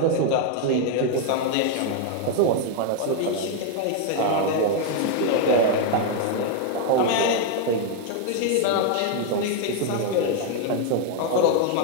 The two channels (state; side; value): different; both; correlation 0.00